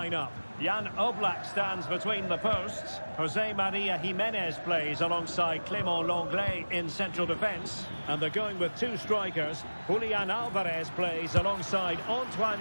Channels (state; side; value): inverted; both; correlation -1.00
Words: up. Jan Oblak stands between the posts. Jose Maria Jimenez plays alongside Clément Lenglet in central defence. And they're going with two strikers. Julian Alvarez plays alongside